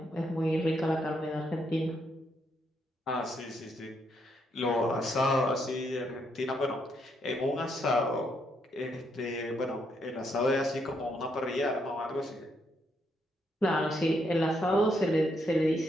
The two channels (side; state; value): both; normal; correlation 0.76